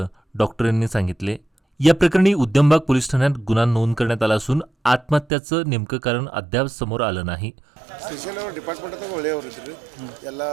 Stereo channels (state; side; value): drops out; left; at 5.2 s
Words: डॉक्टरांनी सांगितले. या प्रकरणी उद्यमबाग पोलीस ठाण्यात गुन्हा नोंद करण्यात आला असून आत्महत्याचं नेमकं कारण अद्याप समोर आलं नाही. ಸ್ಪೆಷಲ್ ಅವರು ಡಿಪಾರ್ಟ್ಮೆಂಟ್ದಾಗ ಒಳ್ಳೆಯವರು ಇದ್ರು. ಎಲ್ಲ